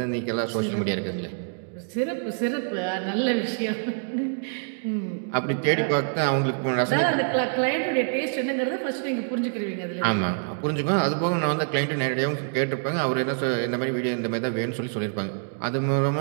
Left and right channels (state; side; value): silent; left; digital silence